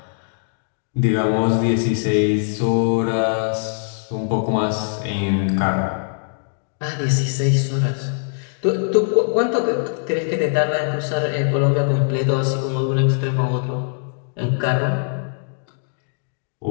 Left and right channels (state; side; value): silent; right; digital silence